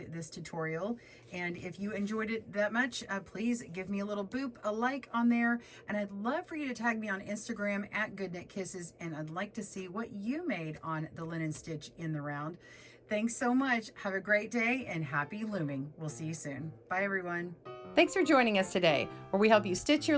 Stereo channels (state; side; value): identical; both; correlation 1.00